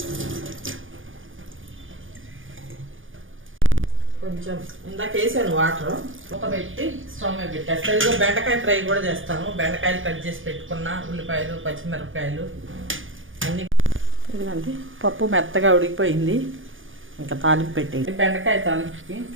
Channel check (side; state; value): left; late; 0.58 ms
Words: కొంచెం ఇందాక వేసాను వాటర్, మూత పెట్టి స్టవ్ మీద పెట్టేస్తాను. ఇదిగో బెండకాయ ఫ్రై కూడా చేస్తాను. బెండకాయలు కట్ చేసి పెట్టుకున్న, ఉల్లిపాయలు, పచ్చిమిరపకాయలు అన్నీ. ఇదిగోండి పప్పు మెత్తగా ఉడికిపోయింది. ఇంకా తాలింపు పెట్టేది. బెండకాయ తాలింపుకి